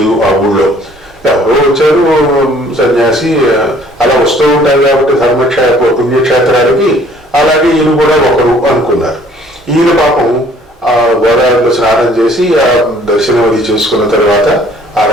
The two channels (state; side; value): normal; both; correlation 0.57